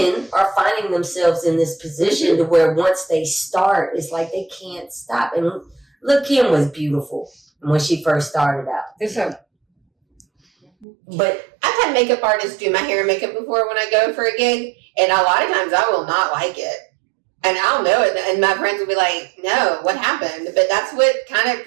are finding themselves in this position to where once they start, it's like they can't stop. And look, Kim was beautiful when she first started out. But I've had makeup artists do my hair and makeup before when I go for a gig, and a lot of times I will not like it. And I'll know it, and my friends will be like, no, what happened? But that's what kind of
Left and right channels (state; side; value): drops out; left; at 10.9 s